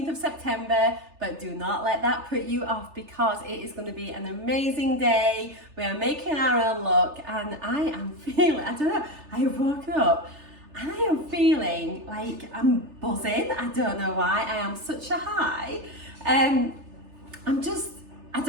of September, but do not let that put you off because it is going to be an amazing day. We are making our own look and I am feeling, I don't know, I have woken up and I am feeling like I'm buzzing. I don't know why, I am such a high. I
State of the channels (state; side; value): late; left; 3.3 ms